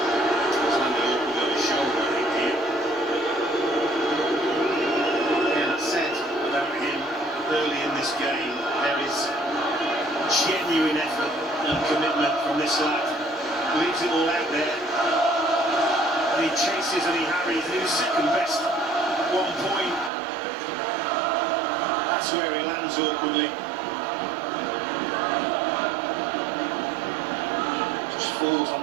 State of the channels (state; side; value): drops out; left; at 20.1 s